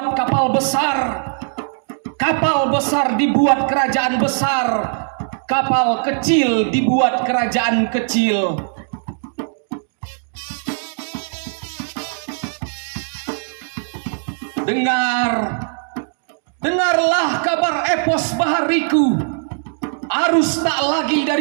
kapal besar. Kapal besar dibuat kerajaan besar. Kapal kecil dibuat kerajaan kecil. Dengarlah kabar epos bahariku. Arus tak lagi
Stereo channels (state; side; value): silent; left; digital silence